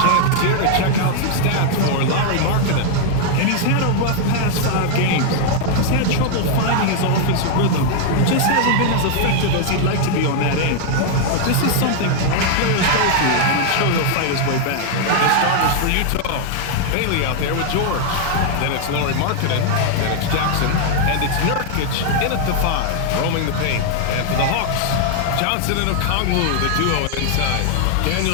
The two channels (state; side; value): different; both; correlation 0.00